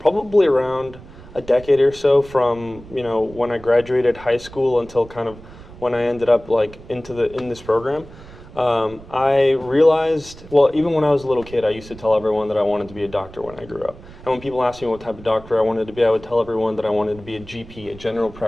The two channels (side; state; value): right; noise; rumble, 18 dB below the sound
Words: around a decade or so, from when I graduated high school until kind of when I ended up in this program. I realized, well, even when I was a little kid, I used to tell everyone that I wanted to be a doctor when I grew up. And when people asked me what type of doctor I wanted to be, I would tell everyone that I wanted to be a GP, a general